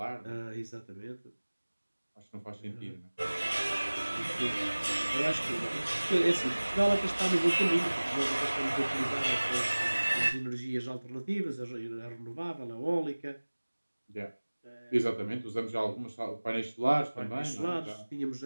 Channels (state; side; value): inverted; both; correlation -1.00